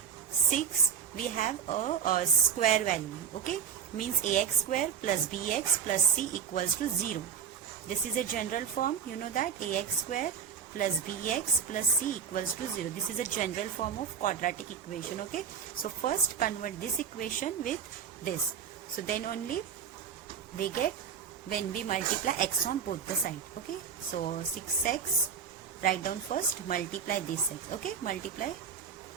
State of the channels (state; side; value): quieter; left; 7.1 dB